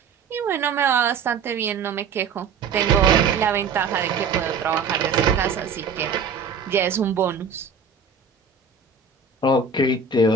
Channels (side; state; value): left; quieter; 5.5 dB